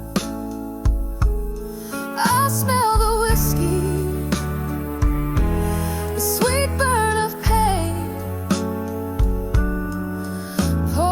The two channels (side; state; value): both; identical; correlation 1.00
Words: I smell the whiskey, the sweet burn of pain.